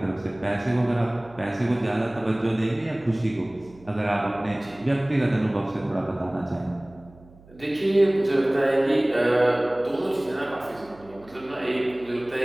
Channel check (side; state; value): right; noise; hum, 24 dB below the sound